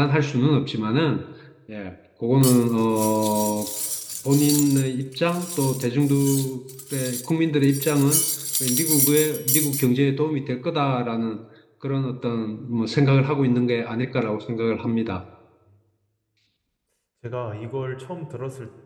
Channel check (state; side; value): identical; both; correlation 1.00